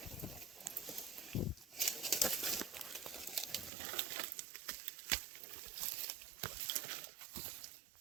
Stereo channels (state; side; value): drops out; left; at 3.7 s